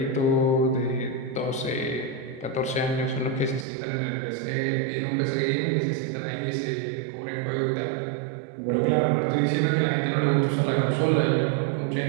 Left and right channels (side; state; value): left; drops out; at 3.7 s